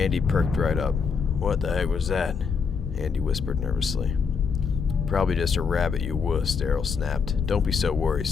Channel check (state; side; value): quieter; right; 5.7 dB